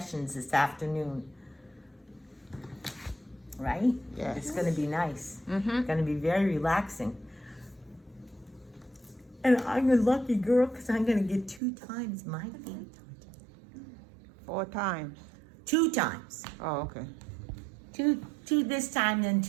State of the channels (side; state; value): left; drops out; at 11.6 s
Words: this afternoon. Right? Yes. It's gonna be nice. Mm-hmm. It's gonna be very relaxing. And I'm a lucky girl because I'm gonna get 2 times my fee. 4 times. 2 times. Oh, okay. 2 this time, then